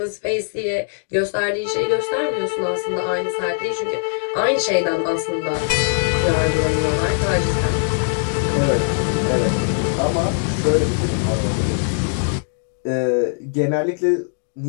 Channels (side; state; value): right; silent; digital silence